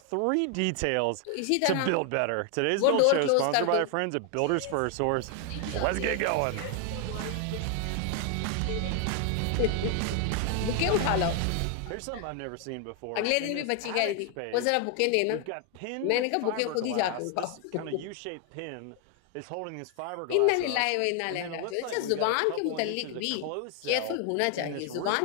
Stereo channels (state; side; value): different; both; correlation 0.00